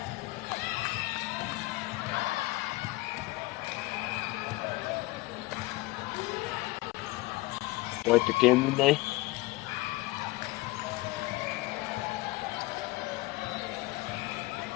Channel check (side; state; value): right; quieter; 20.5 dB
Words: Wait the game in there.